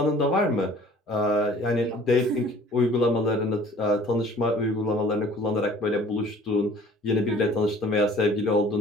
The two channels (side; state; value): both; normal; correlation 0.51